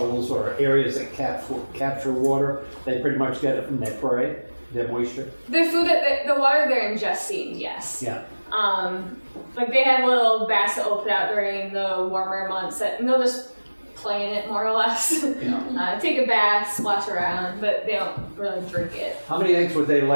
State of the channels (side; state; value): both; inverted; correlation -1.00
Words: or areas that capture water. They pretty much get it from their prey, their moisture. The food the water they're ingesting, yes. Yeah. Like they have little baths that will put out during the warmer months and they'll just play in it more or less. Yeah. Take a bath, splash around, but they don't really drink it. How many eggs would they